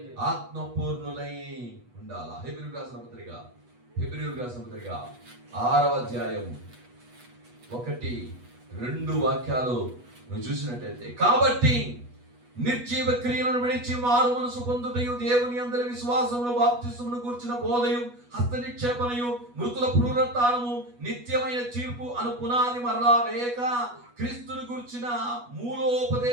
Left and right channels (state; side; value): late; left; 8.2 ms